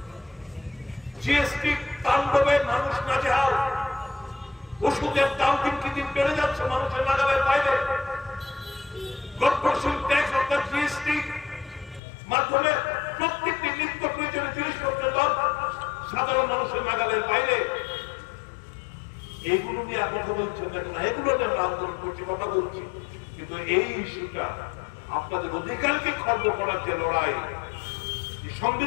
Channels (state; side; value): drops out; right; at 12.0 s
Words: জিএসটি তাণ্ডবে মানুষ নাজেহাল, ওষুধের দাম দিন কি দিন বেড়ে যাচ্ছে মানুষের নাগালের বাইরে, কর্পোরেশন ট্যাক্স অর্থাৎ জিএসটি মাধ্যমে প্রত্যেকটি নিত্য প্রয়োজনীয় জিনিসপত্রের দাম সাধারণ মানুষের নাগালের বাইরে। এইগুলো নিয়ে কথা বলছেন না, এগুলো নিয়ে আমরা আন্দোলন করছি, কথা বলছি, কিন্তু এই ইস্যুটা আপনাদের অধিকারকে খর্ব করার যে লড়াই,